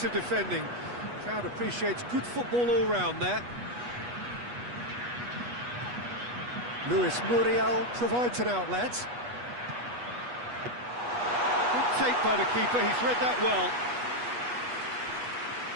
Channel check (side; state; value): left; late; 8.3 ms